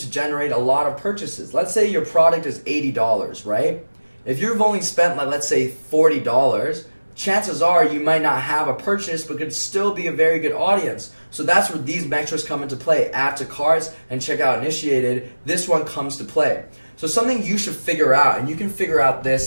generate a lot of purchases. Let's say your product is $80, right? If you've only spent, let's say, $40, chances are you might not have a purchase, but could still be a very good audience. So that's where these metrics come into play. Add to carts and checkout initiated. This one comes to play. So something you should figure out, and you can figure out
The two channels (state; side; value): inverted; both; correlation -1.00